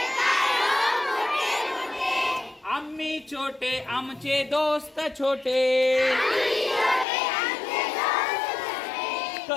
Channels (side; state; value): right; drops out; at 7.1 s